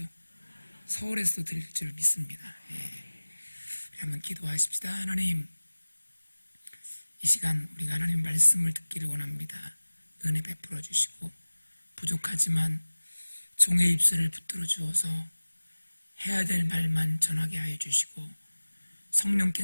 서울에서도 들릴 줄 믿습니다. 한번 기도하십시다. 하나님, 이 시간 우리가 하나님 말씀을 듣기를 원합니다. 은혜 베풀어 주시고 부족하지만 종의 입술을 붙들어 주어서 해야 될 말만 전하게 하여 주시고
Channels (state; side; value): inverted; both; correlation -1.00